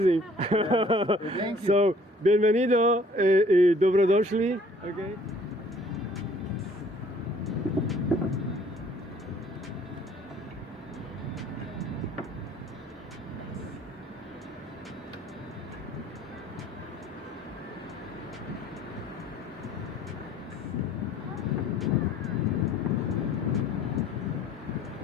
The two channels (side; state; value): both; normal; correlation 0.56